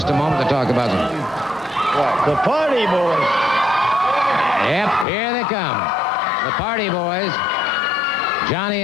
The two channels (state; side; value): drops out; right; at 5.1 s